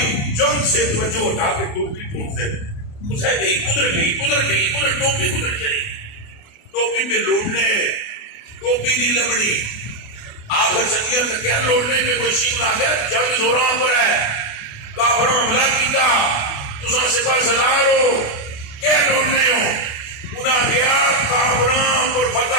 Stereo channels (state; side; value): late; right; 28 ms